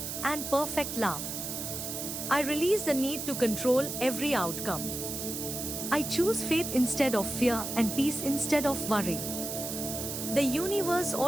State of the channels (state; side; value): noise; right; hiss, 5 dB below the sound